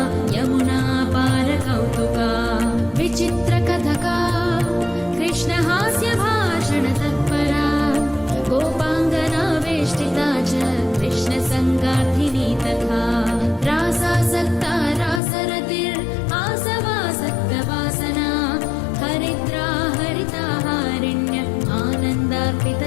यमुना पारकौतुका विचित्रकथका कृष्णहास्यभाषणतत्परा गोपाङ्गना वेष्टिता च कृष्णसङ्गार्थिनी तथा रासासक्ता रासरतिर्आसवासक्तवासना हरिद्रा हरिताहारिण्य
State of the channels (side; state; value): right; drops out; at 15.2 s